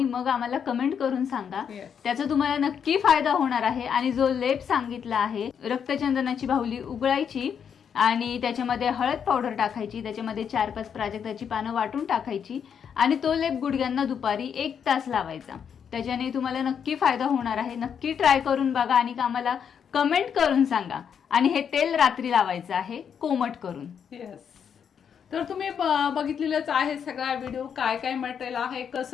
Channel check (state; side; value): quieter; right; 7.6 dB